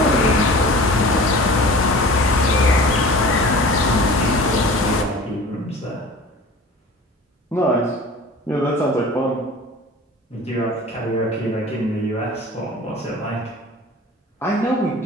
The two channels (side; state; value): both; normal; correlation 0.40